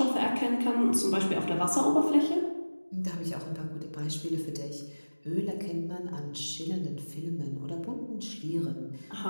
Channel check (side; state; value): both; inverted; correlation -1.00